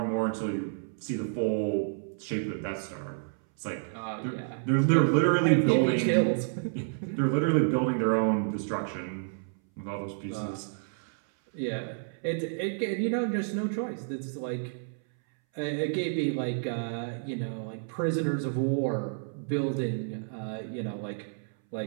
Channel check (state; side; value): silent; left; 58 dB below the other